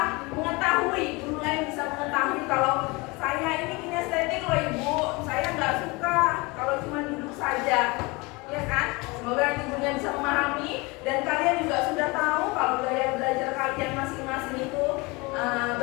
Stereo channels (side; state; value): right; quieter; 25.4 dB